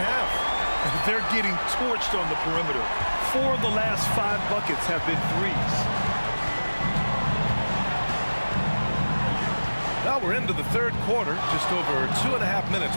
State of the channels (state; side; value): inverted; both; correlation -1.00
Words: They're getting torched on the perimeter. 4 of the last 5 buckets have been threes. Now we're into the third quarter, just over 2.5